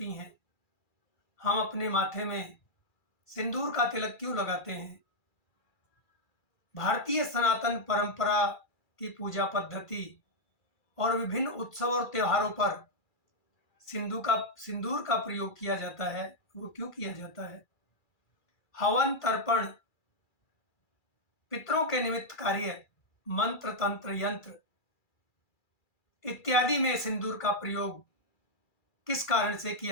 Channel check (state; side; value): late; right; 2.4 ms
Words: हैं। हम अपने माथे में सिंदूर का तिलक क्यों लगाते हैं। भारतीय सनातन परंपरा की पूजा पद्धति और विभिन्न उत्सव और त्योहारों पर सिंदूर का प्रयोग किया जाता है। वो क्यों किया जाता है। हवन तर्पण, पितरों के निमित्त कार्य, मंत्र तंत्र यंत्र इत्यादि में सिंदूर का प्रयोग किस कारण से